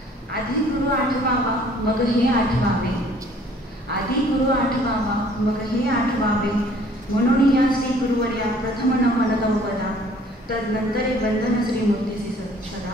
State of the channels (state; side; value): normal; both; correlation 0.56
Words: आधी गुरु आठवावा मग हे आठवावे, आधी गुरु आठवावा मग हे आठवावे, म्हणून या श्री गुरुवर्या प्रथम नमन गौपदा, तदनंतरे बंधन श्री मूर्तीसी सदा.